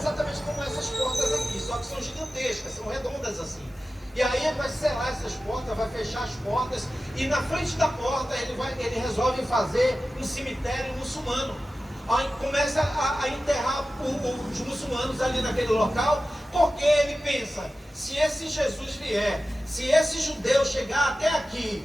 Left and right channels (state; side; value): normal; both; correlation 0.94